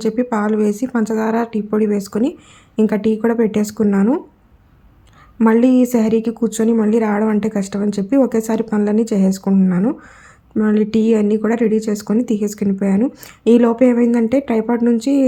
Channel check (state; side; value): identical; both; correlation 1.00